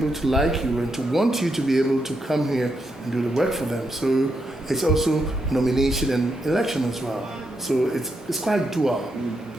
to like you and to want you to be able to come here and do the work for them. So it's also nomination and election as well. So it's quite dual.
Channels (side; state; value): both; normal; correlation 0.82